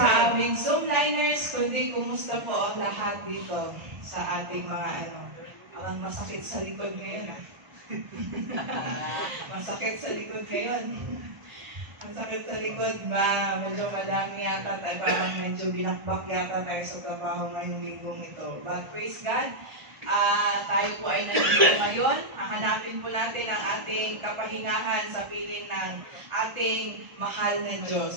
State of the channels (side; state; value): left; late; 1.8 ms